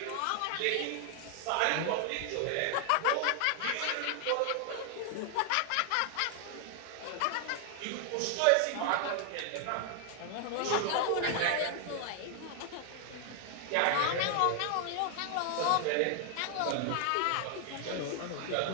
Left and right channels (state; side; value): different; both; correlation 0.00